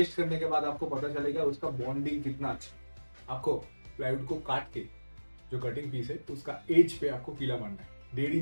करने के बाद आपको पता चलेगा उसका बॉन्डिंग कितना अच्छा है। आपको प्लाईवुड को काट के जो कटिंग पीस है उसका एज पे आपको कीला मारना है। 1.5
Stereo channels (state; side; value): inverted; both; correlation -1.00